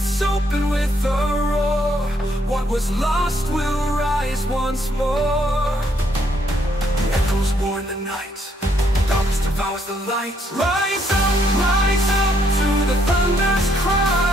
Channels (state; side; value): normal; both; correlation 0.71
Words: open with a roar. What was lost will rise once more. Echoes warn the night. Darkness devours the light. Rise up to the thunder's